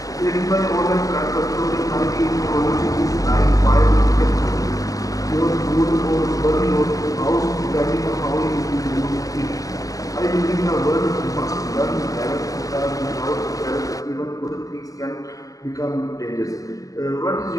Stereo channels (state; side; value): late; right; 0.17 ms